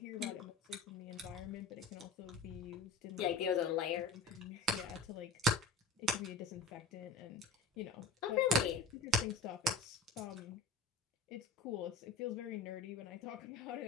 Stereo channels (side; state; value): right; quieter; 3.4 dB